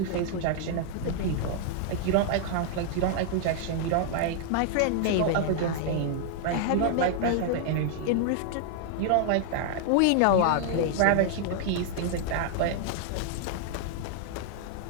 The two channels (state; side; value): different; both; correlation -0.01